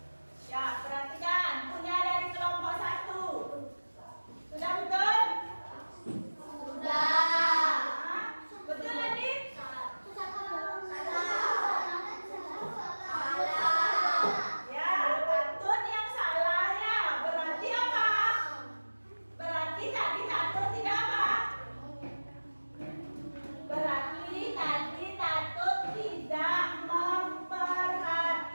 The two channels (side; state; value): both; inverted; correlation -1.00